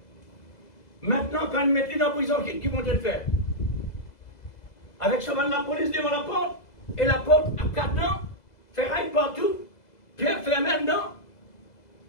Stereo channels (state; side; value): late; right; 2.0 ms